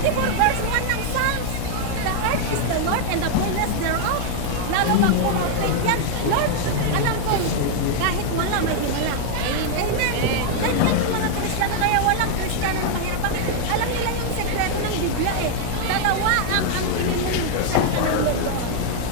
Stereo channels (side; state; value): both; different; correlation 0.00